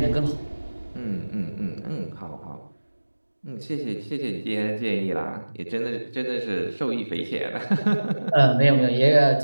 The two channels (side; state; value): both; inverted; correlation -1.00